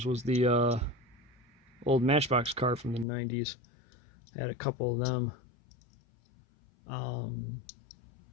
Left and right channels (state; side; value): drops out; right; at 3.1 s